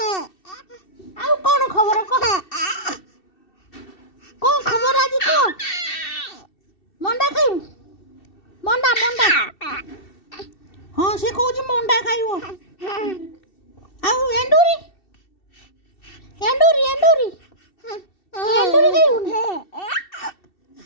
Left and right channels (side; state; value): right; late; 2.7 ms